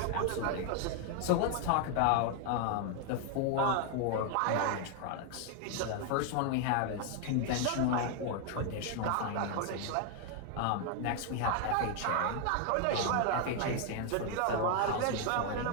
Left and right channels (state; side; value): different; both; correlation 0.01